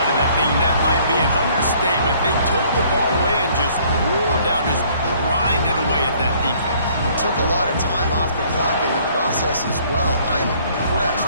of that thing. That might be an understatement. They took the ball away and just wore down, just grinded away at that defense. It took a lot of time off the clock in the process as well. I'm impressed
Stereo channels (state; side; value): inverted; both; correlation -0.59